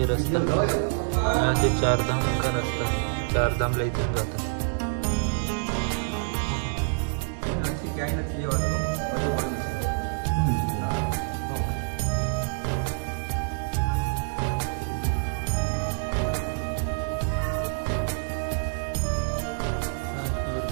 रास्ता, यहाँ से चार धाम का रास्ता, चार धाम ला इथून जातात.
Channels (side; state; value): left; silent; digital silence